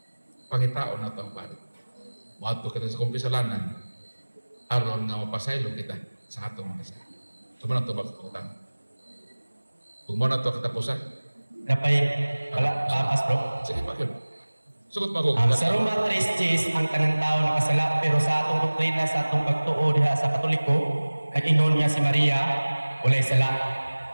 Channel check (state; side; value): inverted; both; correlation -1.00